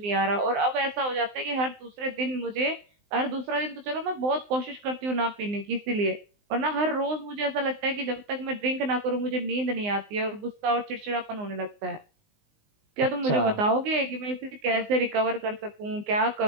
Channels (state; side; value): late; left; 19 ms